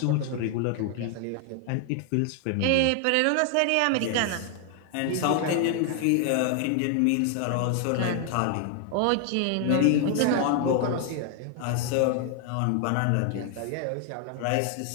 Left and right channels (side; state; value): both; different; correlation 0.00